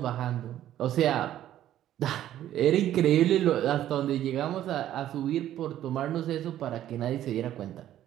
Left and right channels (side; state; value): left; quieter; 12.2 dB